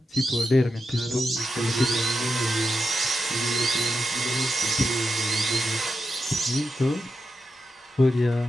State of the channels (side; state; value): both; normal; correlation 0.87